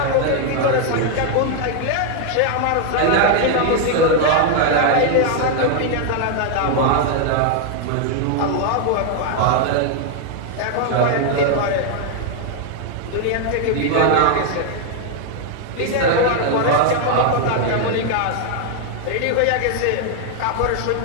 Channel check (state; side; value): different; both; correlation 0.00